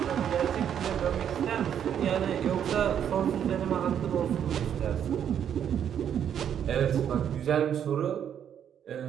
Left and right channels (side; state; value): left; quieter; 9.1 dB